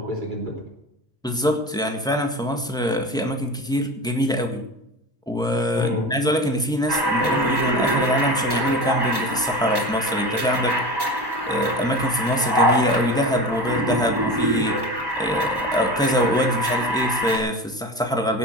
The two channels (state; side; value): normal; both; correlation 0.30